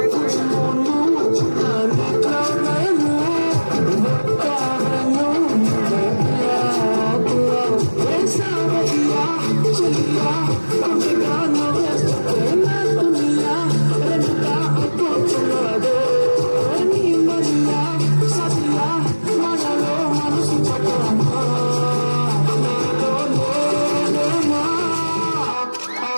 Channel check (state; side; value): inverted; both; correlation -1.00